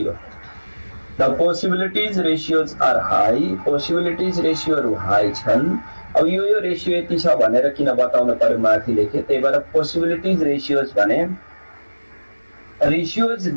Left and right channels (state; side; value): inverted; both; correlation -1.00